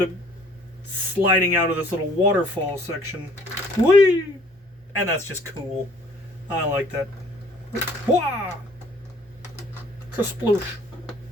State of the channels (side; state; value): both; normal; correlation 0.57